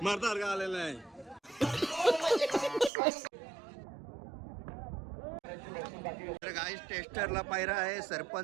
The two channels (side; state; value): left; drops out; at 2.9 s